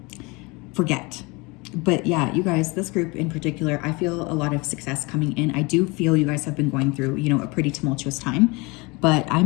forget. But yeah, you guys, this group in particular, I feel a lot of success coming in. I do feel you guys have been going through, you know, a pretty tumultuous time, but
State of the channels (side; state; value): right; quieter; 26.2 dB